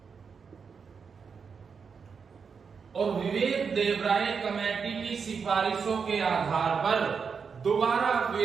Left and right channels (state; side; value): quieter; left; 5.9 dB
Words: और विवेक देवराय कमेटी की सिफारिशों के आधार पर दोबारा